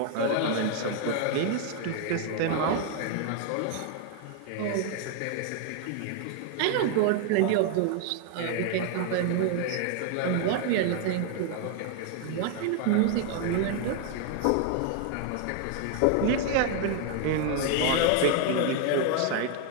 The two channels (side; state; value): both; different; correlation 0.00